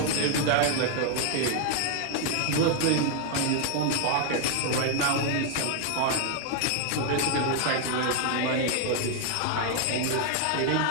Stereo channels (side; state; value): both; different; correlation 0.00